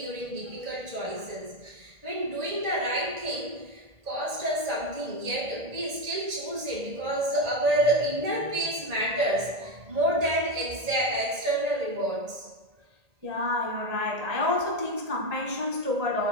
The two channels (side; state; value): left; late; 1.8 ms